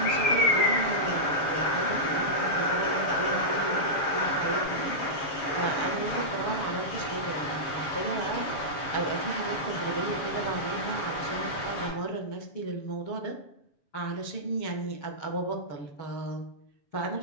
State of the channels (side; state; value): right; late; 7.1 ms